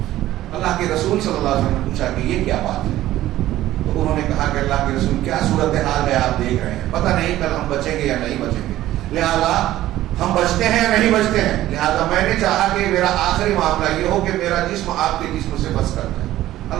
اللہ کے رسول صلی اللہ علیہ وسلم نے پوچھا کہ یہ کیا بات ہے؟ تو انہوں نے کہا کہ اللہ کے رسول کیا صورتحال ہے آپ دیکھ رہے ہیں، پتہ نہیں کل ہم بچیں گے یا نہیں بچیں گے، لہذا ہم بچتے ہیں یا نہیں بچتے ہیں، لہذا میں نے چاہا کہ میرا آخری معاملہ یہ ہو کہ میرا جسم آپ کے جسم سے بس کرتا ہے.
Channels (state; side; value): quieter; left; 14.5 dB